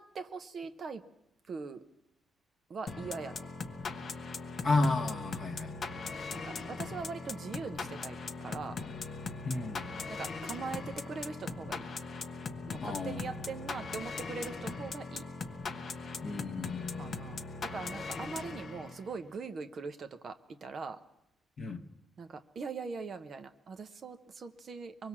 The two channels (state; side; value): normal; both; correlation 0.81